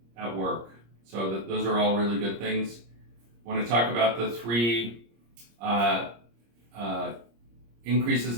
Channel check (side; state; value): left; late; 26 ms